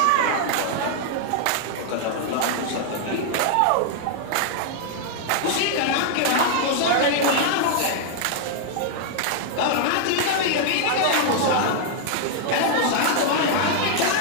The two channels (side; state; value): both; different; correlation 0.00